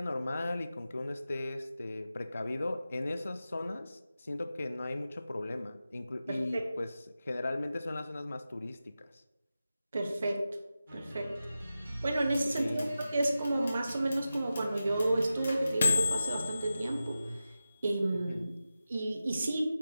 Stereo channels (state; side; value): inverted; both; correlation -0.92